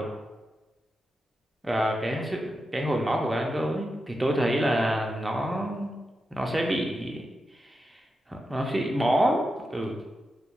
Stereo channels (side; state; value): both; normal; correlation 0.89